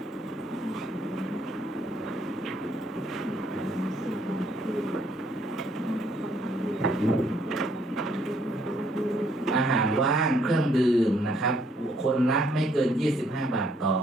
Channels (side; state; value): both; normal; correlation 0.68